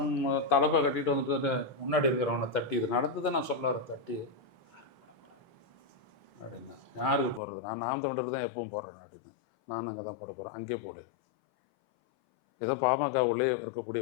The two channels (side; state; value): right; drops out; at 7.4 s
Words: தலைப்பை கட்டிட்டு வந்துட்டு முன்னாடி இருக்கிறவனை தட்டி இது நடந்ததை நான் சொல்ல வரேன். தட்டி அப்படின்னா யாருக்கு போடுறது, நான் நாம் தமிழர் தான் எப்பவும் போடுறேன் அப்படின்னு. நான் அங்கே தான் போட போகிறேன், அங்கே போடு. ஏதோ பாமக உள்ளே